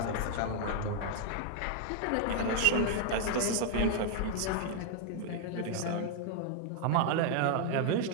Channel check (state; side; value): different; both; correlation 0.00